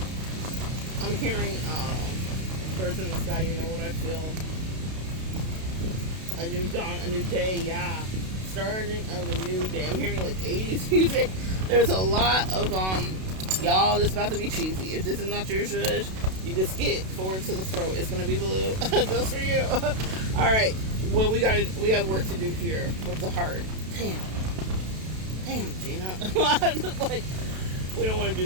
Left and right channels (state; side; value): late; left; 32 ms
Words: I'm hearing birds in the sky, you know what I feel. A new dawn, a new day, yeah. Starting of a new day. I'm hearing like 80s music. There's a lot of, y'all, this is about to be cheesy. If this is not your zhuzh, you can skip forward to the throat. It's going to be blue just for you. All right. Well, we got work to do here with the heart. Damn, Gina. Like, we don't want to do